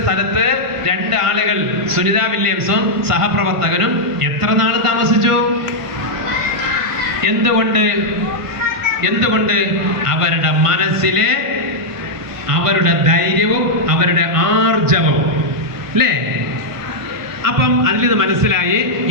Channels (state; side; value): late; left; 1.5 ms